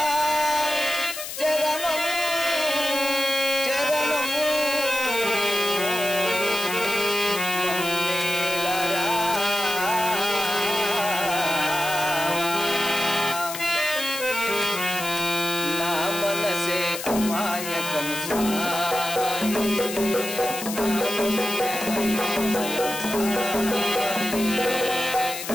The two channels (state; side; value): noise; left; hiss, 7 dB below the sound